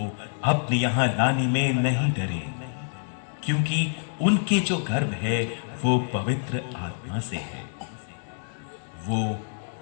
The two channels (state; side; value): silent; right; digital silence